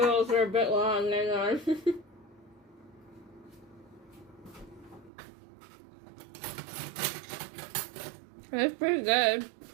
are a bit long, they're gone. It's pretty good.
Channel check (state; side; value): drops out; left; at 5.1 s